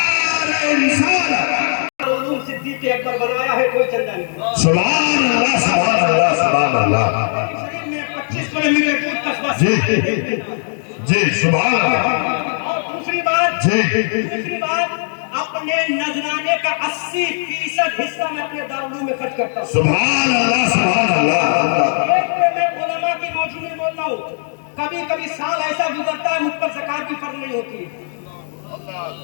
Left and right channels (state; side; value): silent; right; digital silence